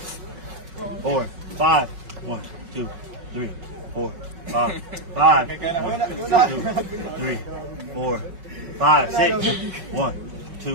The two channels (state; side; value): late; left; 5.3 ms